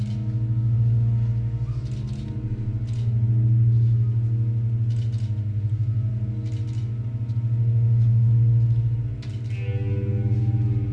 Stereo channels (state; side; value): identical; both; correlation 1.00